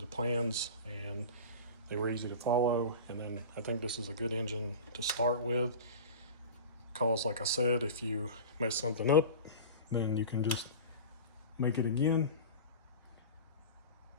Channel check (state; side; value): inverted; both; correlation -0.33